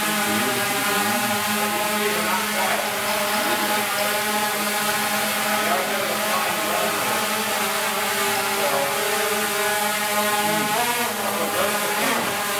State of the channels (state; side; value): identical; both; correlation 1.00